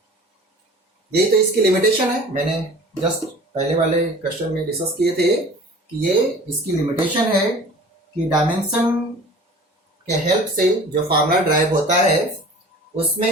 यही तो इसकी लिमिटेशन है, मैंने जस्ट पहले वाले क्वेश्चन में डिस्कस किए थे कि ये इसकी लिमिटेशन है कि डायमेंशन के हेल्प से जो फार्मूला ड्राइव होता है उसमें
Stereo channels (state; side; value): normal; both; correlation 0.44